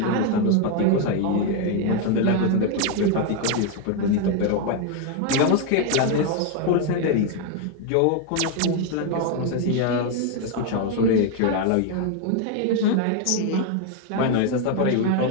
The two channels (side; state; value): both; different; correlation 0.01